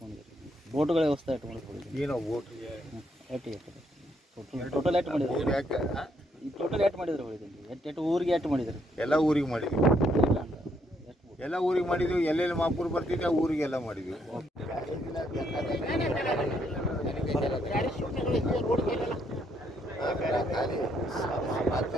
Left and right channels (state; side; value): normal; both; correlation 0.73